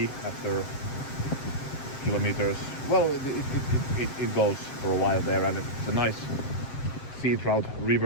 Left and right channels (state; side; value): late; right; 7.6 ms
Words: after kilometers. Well, it goes for a while there, and it's a nice sea trout